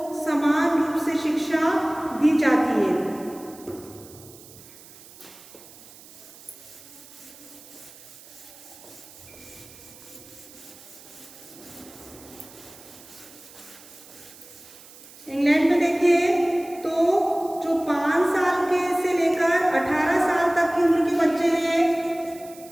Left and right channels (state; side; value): noise; right; hiss, 20 dB below the sound